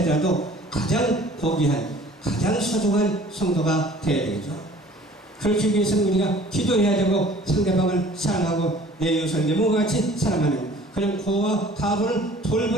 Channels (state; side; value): normal; both; correlation 0.50